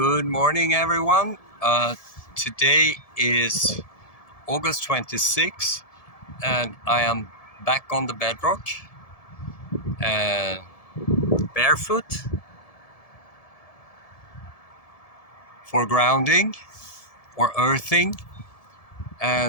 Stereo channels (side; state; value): right; late; 1.7 ms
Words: morning, everyone. Today is August 26th, and I am back on the bedrock, uh, barefoot for grounding or earthing.